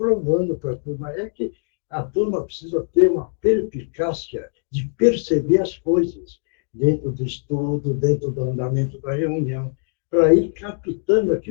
para a turma. É que a turma precisa ter uma perspicácia de perceber as coisas dentro do estudo, dentro do andamento da reunião, para ir captando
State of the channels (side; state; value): right; silent; digital silence